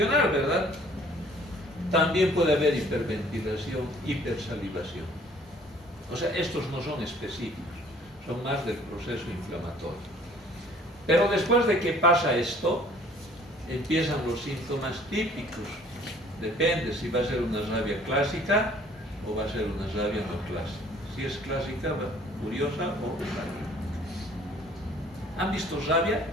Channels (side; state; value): both; normal; correlation 0.55